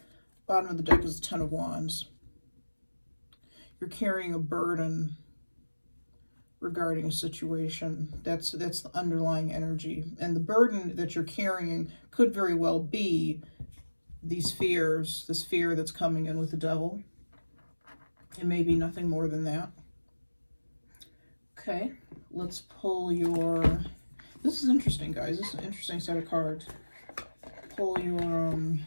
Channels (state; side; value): inverted; both; correlation -1.00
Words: Bottom of the deck is the Ten of Wands. You're carrying a burden regarding a situation. That's the underlying energy. And the burden that you're carrying could very well be these fears, this fear that's coming in with the Devil. It may be nothing more than that. Okay, let's pull your... This is interesting, guys. This is an interesting set of cards. Pull your...